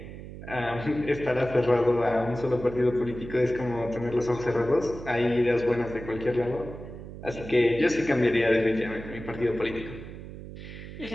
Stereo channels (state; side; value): noise; right; hum, 12 dB below the sound